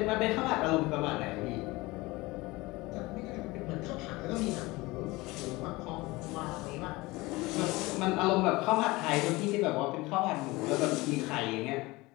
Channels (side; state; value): right; quieter; 21.8 dB